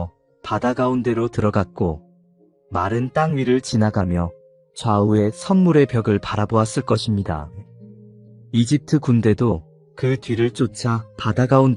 바다 가운데로 들어갔고 마른 땅 위를 지나가며 좌우에 선물의 벽을 바라보았을 것입니다. 이집트 군대도 그 뒤를 쫓아 바다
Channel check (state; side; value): identical; both; correlation 1.00